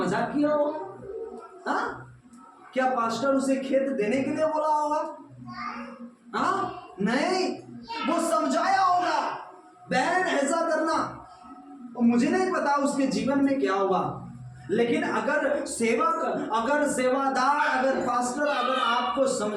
किया हो? क्या पास्टर उसे खेत देने के लिए बोला होगा? नहीं, वो समझाया होगा, बहन ऐसा करना। और मुझे नहीं पता उसके जीवन में क्या हुआ, लेकिन अगर सेवक, अगर सेवादार, अगर पास्टर अगर आपको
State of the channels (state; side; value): identical; both; correlation 1.00